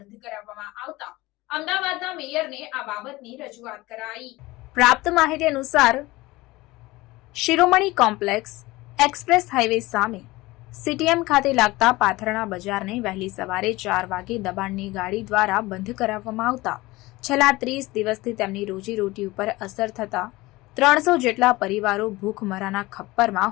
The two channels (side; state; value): right; quieter; 20.2 dB